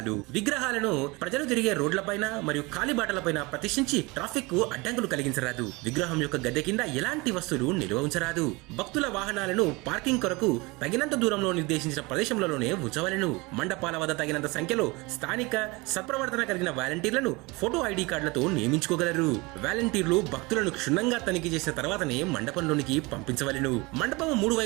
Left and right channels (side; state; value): left; quieter; 24.8 dB